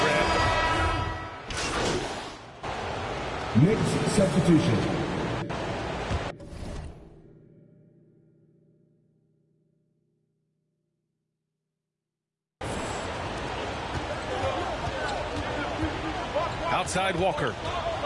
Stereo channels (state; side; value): identical; both; correlation 1.00